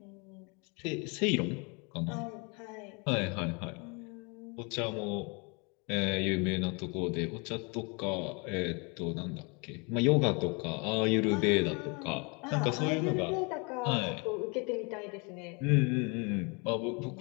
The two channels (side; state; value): right; quieter; 31.6 dB